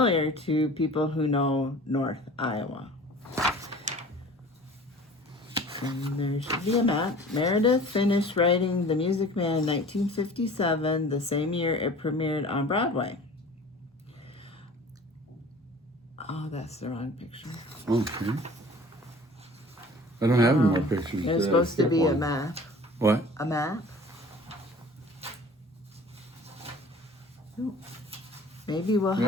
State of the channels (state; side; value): normal; both; correlation 0.45